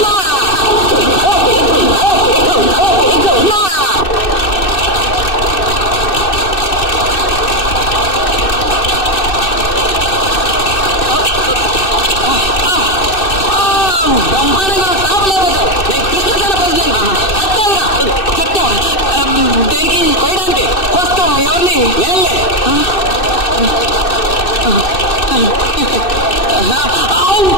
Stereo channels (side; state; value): right; late; 2.6 ms